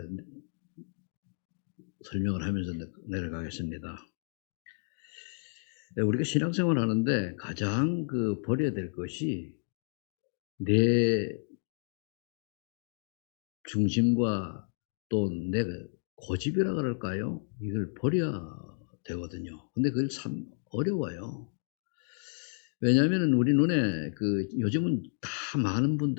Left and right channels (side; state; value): right; silent; digital silence